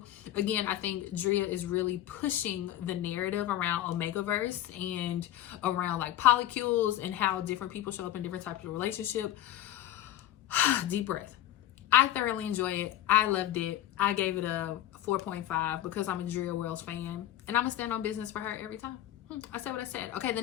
Again, I think Dria is really pushing the narrative around Omegaverse and around like polycules and how different people show up in different types of relationship. Deep breath. I thoroughly enjoy it. I loved it. I gave it a 4.5 because I'm a Dria Wells fan and I'm gonna stand on business for her every time. I said what I said. Okay, the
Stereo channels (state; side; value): quieter; right; 12.9 dB